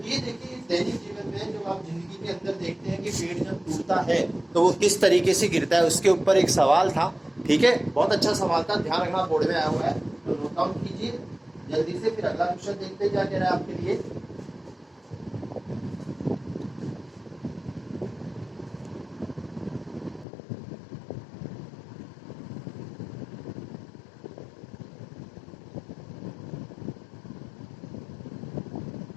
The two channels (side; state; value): right; drops out; at 20.2 s